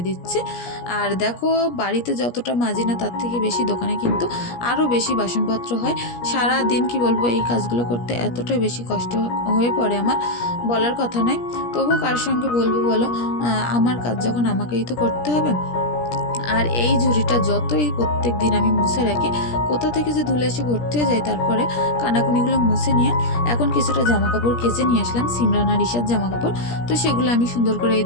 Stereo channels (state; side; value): late; right; 17 ms